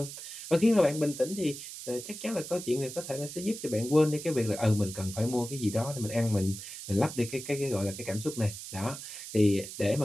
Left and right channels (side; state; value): right; noise; hiss, 10 dB below the sound